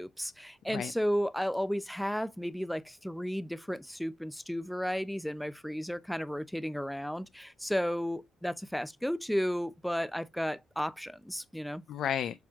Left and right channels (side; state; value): both; normal; correlation 0.97